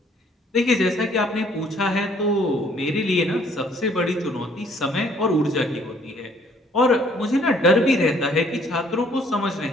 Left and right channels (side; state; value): both; normal; correlation 0.61